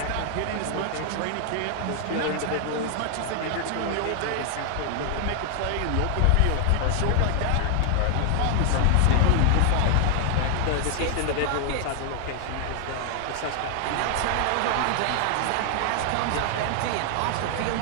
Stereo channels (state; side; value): different; both; correlation 0.00